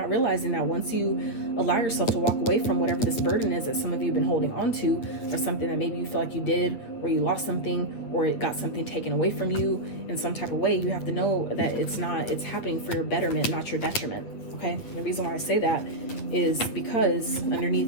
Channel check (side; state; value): right; late; 9.1 ms